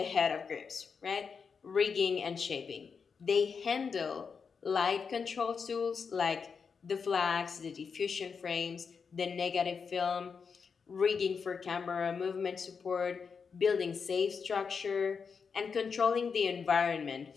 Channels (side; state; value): right; quieter; 5.8 dB